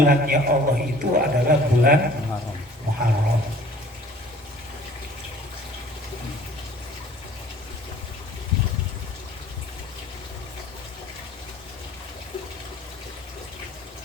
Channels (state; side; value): normal; both; correlation 0.51